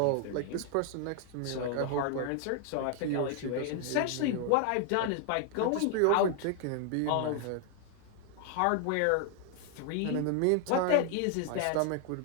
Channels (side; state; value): both; different; correlation 0.00